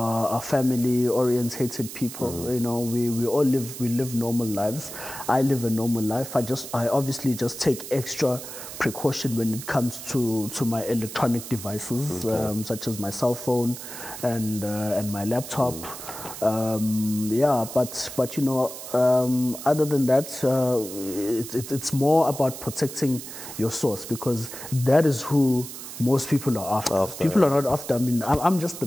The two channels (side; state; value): right; noise; hiss, 11 dB below the sound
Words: family-orientated people. You know, we live normal lives. I live a normal life. I obviously just take extra precaution when it comes to my electronic devices, such as my cell phone and my laptop. But you know, other than that, it's more about protecting your source, because that is who most people are after. People are not after. I mean, I'm just the